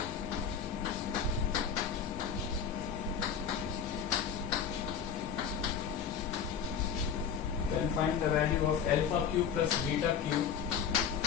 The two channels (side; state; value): right; quieter; 7.5 dB